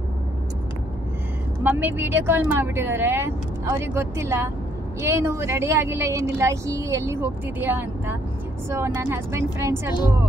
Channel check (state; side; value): normal; both; correlation 0.68